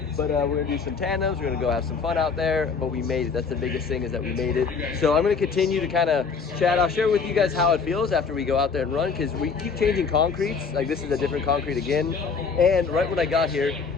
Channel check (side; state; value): right; quieter; 5.3 dB